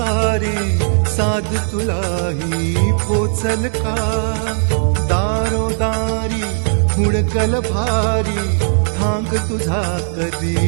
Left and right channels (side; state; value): left; silent; 61 dB below the other